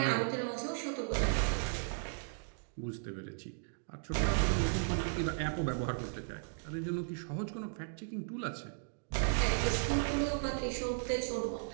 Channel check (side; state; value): left; silent; digital silence